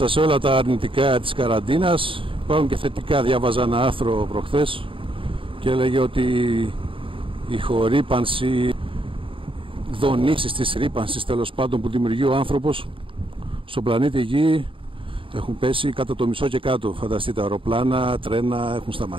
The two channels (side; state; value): left; late; 0.25 ms